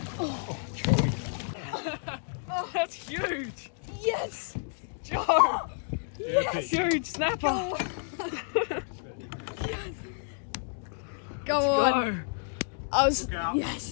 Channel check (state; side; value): silent; right; digital silence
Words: Oh, Joey. That's huge. Yes! Joe. Yeah, That's huge snapper. Go on. Go. I was. Look out. Yes.